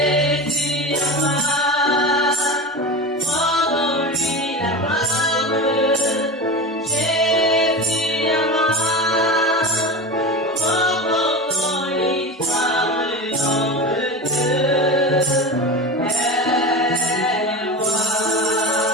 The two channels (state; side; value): normal; both; correlation 0.27